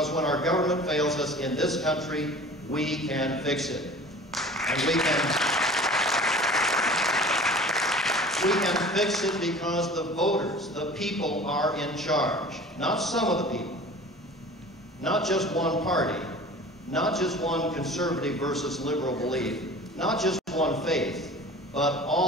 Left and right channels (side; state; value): both; normal; correlation 0.42